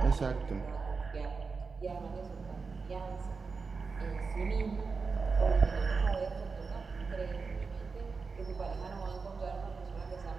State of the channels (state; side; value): quieter; left; 4.7 dB